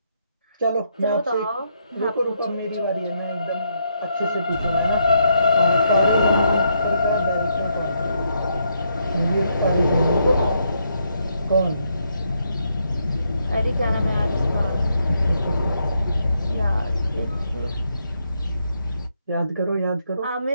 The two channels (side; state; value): both; inverted; correlation -0.77